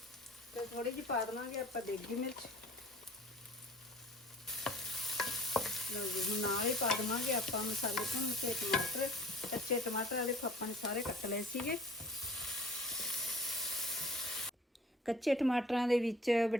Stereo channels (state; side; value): normal; both; correlation 0.50